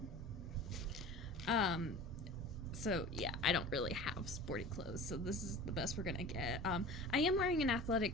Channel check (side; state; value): both; normal; correlation 0.38